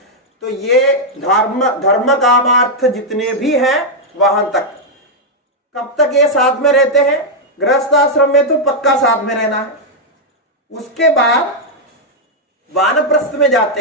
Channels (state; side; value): normal; both; correlation -0.02